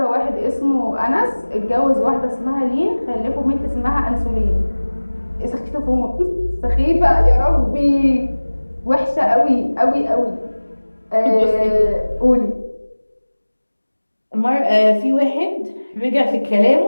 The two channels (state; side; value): inverted; both; correlation -1.00